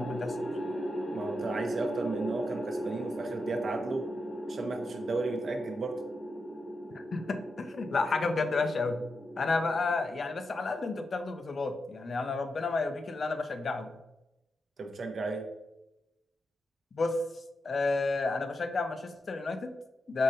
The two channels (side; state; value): both; normal; correlation 0.87